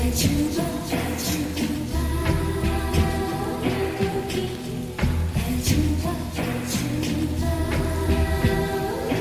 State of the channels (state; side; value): identical; both; correlation 1.00